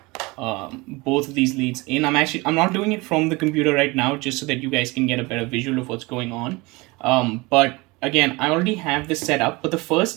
both of these leads in. I'm not doing it from the computer right now, just so that you guys can get a better visual of what's going on. But again, I already have this set up, but the first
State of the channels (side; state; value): left; quieter; 24.2 dB